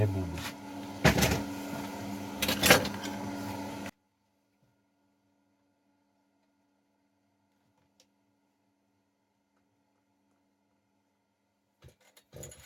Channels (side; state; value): both; identical; correlation 1.00